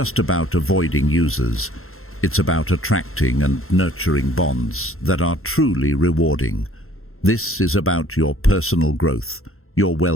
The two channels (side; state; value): right; late; 0.62 ms